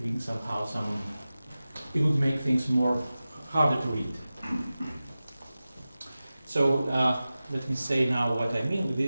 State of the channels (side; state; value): both; inverted; correlation -0.95